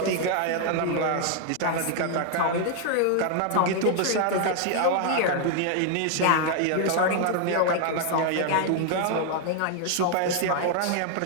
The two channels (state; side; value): different; both; correlation 0.00